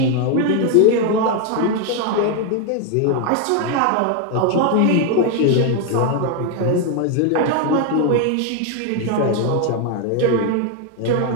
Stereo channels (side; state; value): both; different; correlation 0.01